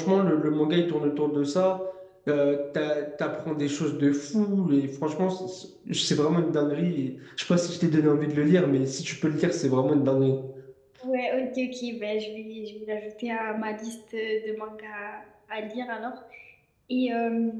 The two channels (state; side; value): identical; both; correlation 1.00